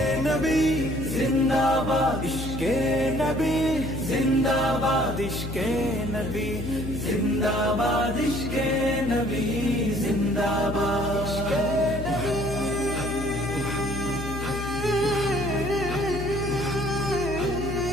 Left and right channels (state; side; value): noise; left; hum, 7 dB below the sound